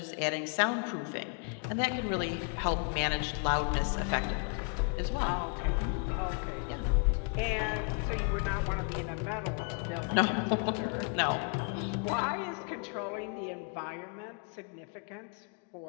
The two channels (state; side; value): quieter; right; 39.2 dB